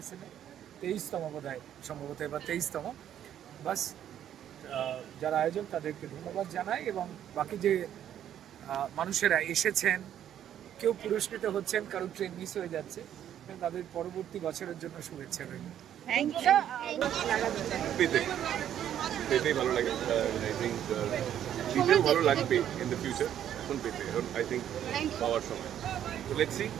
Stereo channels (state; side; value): quieter; left; 10.5 dB